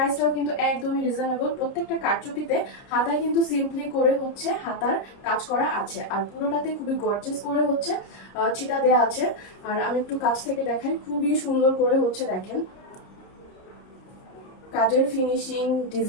কিন্তু একদমই রিজনেবল। প্রত্যেকটা কারচুপিতে হাতায় কিন্তু সিম্পলি করে হচ্ছে হাতার কাজ করা আছে, আর পুরোটাতে খুবই গর্জিয়াস করে হচ্ছে চিটা দেওয়া আছে। আর আমি একটু কাছ থেকে দেখাই, খুবই সুন্দর করে হচ্ছে দেখেন কাজের ফিনিশিং,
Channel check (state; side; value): late; right; 30 ms